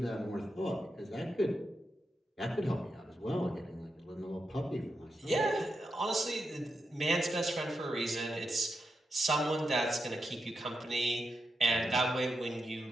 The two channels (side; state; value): both; normal; correlation 0.87